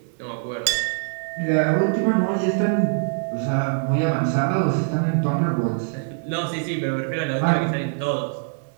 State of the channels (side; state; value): left; silent; digital silence